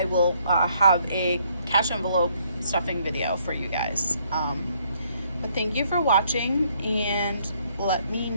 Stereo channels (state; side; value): inverted; both; correlation -0.68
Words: will have a cash envelope stuffing video for you guys. But thank you for watching, and let me